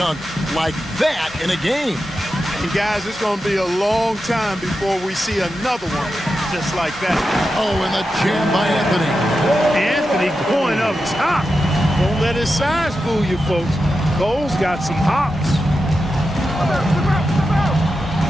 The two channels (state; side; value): normal; both; correlation 0.90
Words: like that in a game. And guys, it's going to be a long time before we see another one just like that. Oh, and the jam by Anthony. Anthony going up top. Don't let his size fool you, folks. Cole's got some hops.